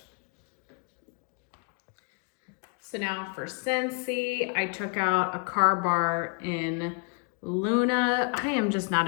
So now for Scentsy, I took out a car bar in Luna. I am just not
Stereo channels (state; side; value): quieter; right; 35.3 dB